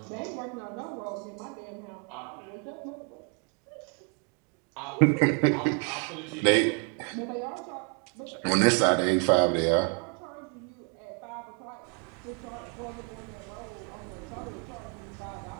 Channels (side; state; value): left; quieter; 37.9 dB